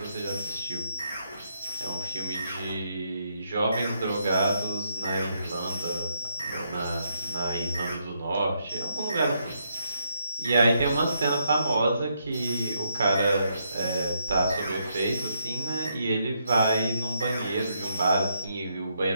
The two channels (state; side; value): inverted; both; correlation -0.77